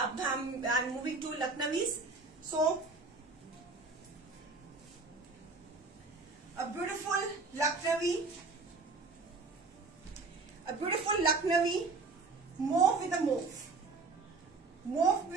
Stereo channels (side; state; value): left; quieter; 3.9 dB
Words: अब हम I am moving to Lucknowis. So a beautiful Lucknowi, mauve with